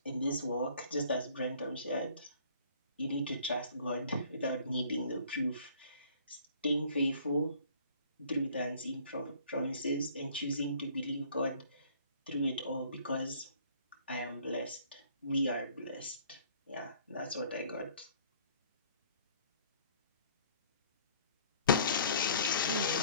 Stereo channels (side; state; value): both; inverted; correlation -0.55